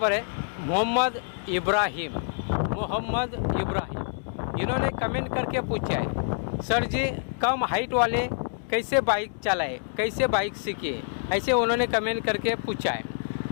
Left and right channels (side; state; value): right; silent; digital silence